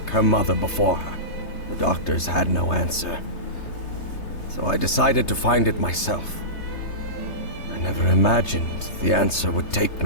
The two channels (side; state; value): right; late; 3.3 ms